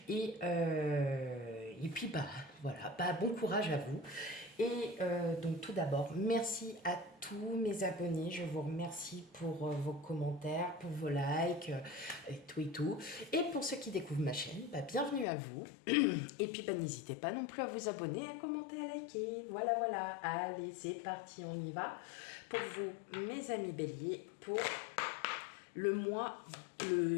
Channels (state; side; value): drops out; right; at 15.2 s